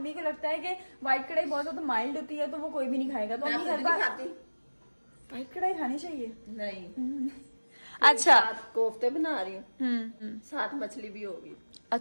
को लगता है कि व्हाइट कढ़ाई बहुत ज्यादा माइल्ड होती है, तो वो कोई भी नहीं खाएगा। तो अम्मी हर बार व्हाइट कढ़ाई खानी चाहिए। नहीं, अच्छा, कोफ्ते बना रही हूँ, साथ मछली भी होगी।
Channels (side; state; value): both; inverted; correlation -1.00